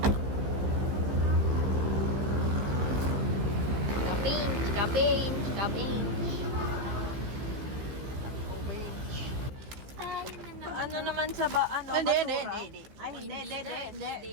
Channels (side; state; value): left; late; 15 ms